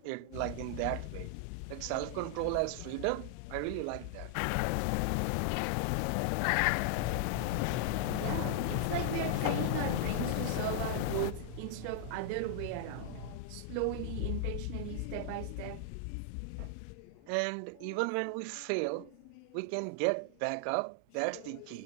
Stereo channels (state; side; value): different; both; correlation -0.01